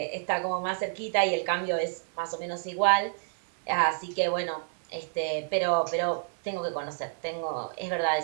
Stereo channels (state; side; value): silent; left; digital silence